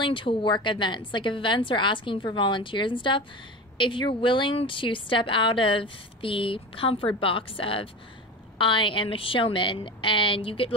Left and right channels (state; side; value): normal; both; correlation 0.29